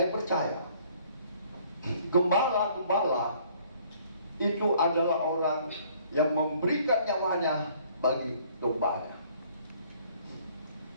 percaya gembala-gembala itu adalah orang yang memberikan nyawanya bagi dombanya,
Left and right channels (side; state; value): both; inverted; correlation -0.59